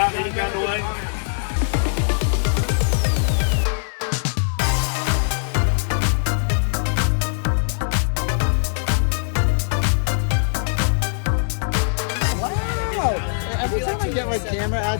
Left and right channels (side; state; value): right; silent; digital silence